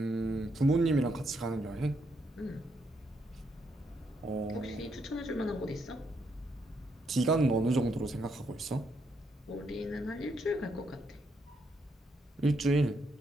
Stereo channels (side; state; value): both; normal; correlation 0.76